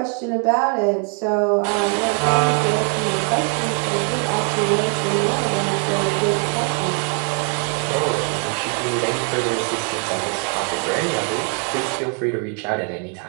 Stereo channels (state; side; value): quieter; left; 39.6 dB